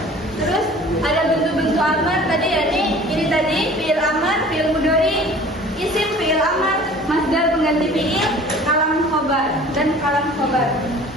Terus ada bentuk-bentuk amar tadi ini tadi fiil amar, fiil mudhari, isim fiil amar, masdar pengganti fiil, kalam khobar dan kalam khobar.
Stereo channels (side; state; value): both; normal; correlation 0.46